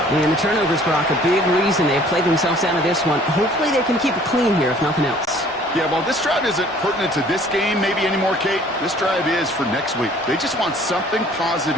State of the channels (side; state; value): both; normal; correlation 0.54